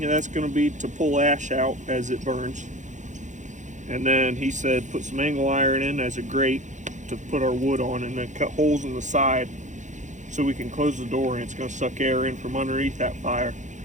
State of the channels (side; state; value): left; late; 0.35 ms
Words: that's going to be to pull ash out as it burns. And then he said put some angle iron in as a grate to put our wood on, and then cut holes in the side so we can close the door, and it's going to suck air in from underneath that fire,